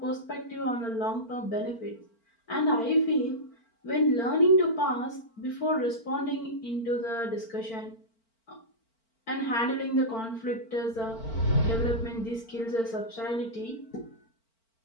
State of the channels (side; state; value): right; late; 4.4 ms